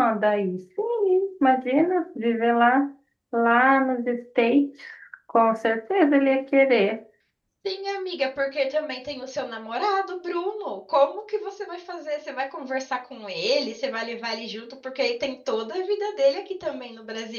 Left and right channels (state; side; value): identical; both; correlation 1.00